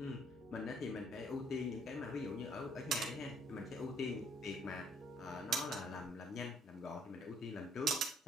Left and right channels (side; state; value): both; normal; correlation 0.65